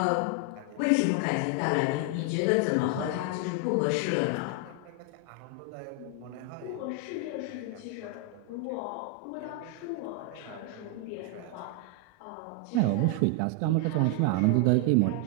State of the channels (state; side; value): different; both; correlation 0.01